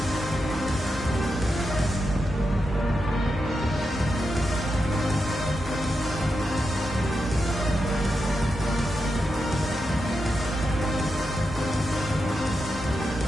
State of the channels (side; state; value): both; normal; correlation 0.87